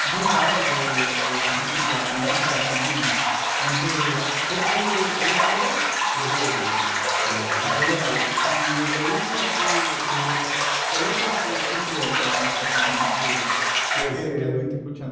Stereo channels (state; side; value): identical; both; correlation 1.00